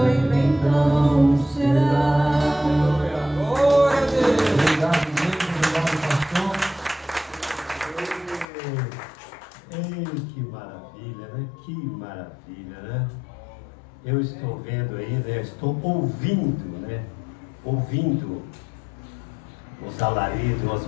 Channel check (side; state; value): right; drops out; at 8.5 s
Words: então será. Obrigado, gente. Obrigado, pastor. Ei, que maravilha, né? Que maravilha, né? Eu estou vendo aí, né? Estou ouvindo, né? Ouvindo os alaridos, as